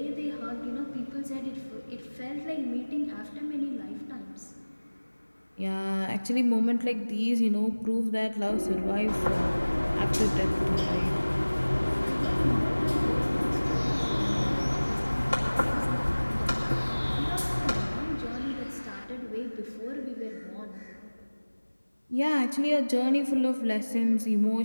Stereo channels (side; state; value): both; inverted; correlation -1.00